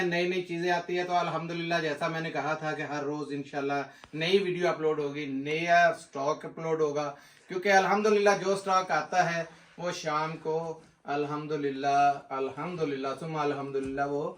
नई नई चीजें आती है, तो अल्हम्दुलिल्लाह जैसा मैंने कहा था कि हर रोज इंशाल्लाह नई वीडियो अपलोड होगी, नया स्टॉक अपलोड होगा। क्योंकि अल्हम्दुलिल्लाह जो स्टॉक आता है वो शाम को अल्हम्दुलिल्लाह अल्हम्दुलिल्लाह सुम्मा अल्हम्दुलिल्लाह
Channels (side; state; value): both; identical; correlation 1.00